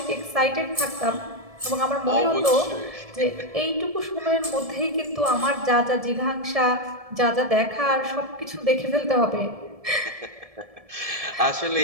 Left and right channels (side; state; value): left; late; 1.7 ms